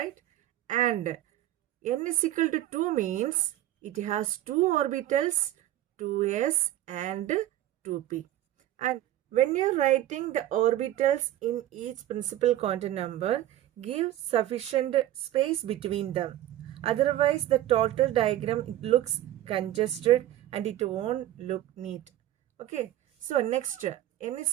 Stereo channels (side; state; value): left; quieter; 13.6 dB